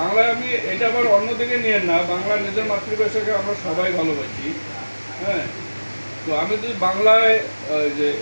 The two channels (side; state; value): both; inverted; correlation -1.00